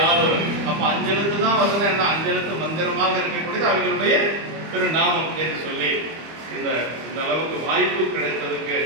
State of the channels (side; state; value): left; late; 25 ms